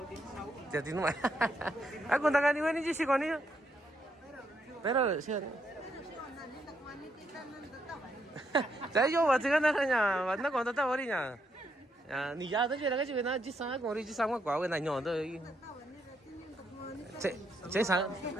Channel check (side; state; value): both; normal; correlation 0.77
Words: Ya tiene más. Ah, con tagani wen ni si koni. Pero sí. Saya yo wa tiga na nya, wa na kon ta bori nya. Ya ni ya da je la ga ji na ji sa ko ri ji sa kwa we na ño do. Che sa.